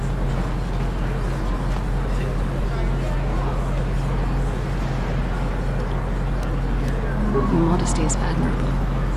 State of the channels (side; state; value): both; identical; correlation 1.00